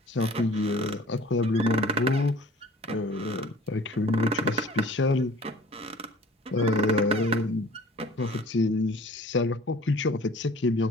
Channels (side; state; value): both; normal; correlation 0.48